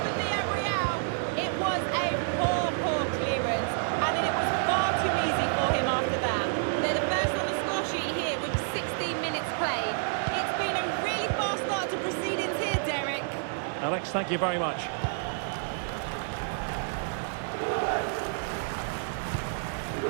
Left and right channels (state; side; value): silent; left; digital silence